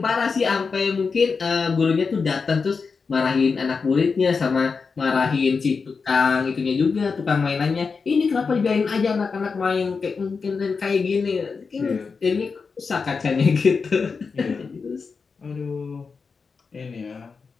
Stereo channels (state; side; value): quieter; right; 5.0 dB